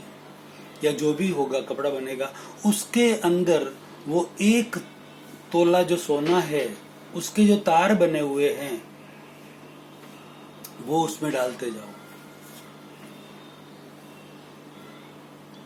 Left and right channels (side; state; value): both; identical; correlation 1.00